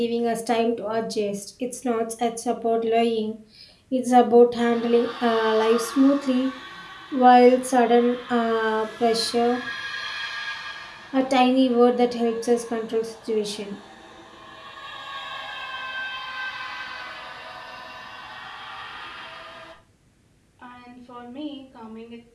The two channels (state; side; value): identical; both; correlation 1.00